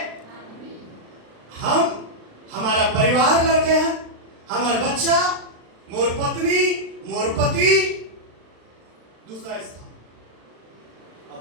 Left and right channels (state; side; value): late; left; 36 ms